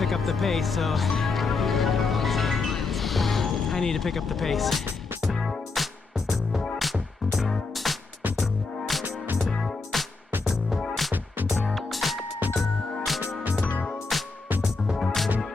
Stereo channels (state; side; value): quieter; right; 4.0 dB